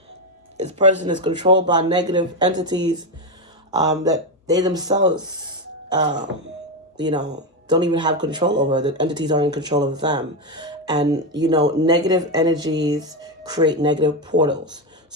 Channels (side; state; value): both; normal; correlation 0.10